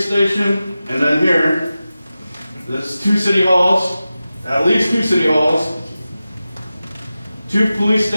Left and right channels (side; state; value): both; inverted; correlation -0.94